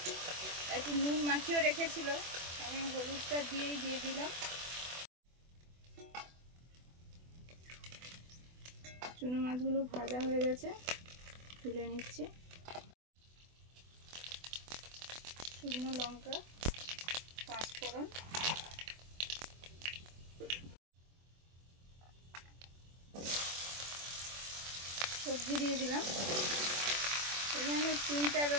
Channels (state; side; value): late; left; 24 ms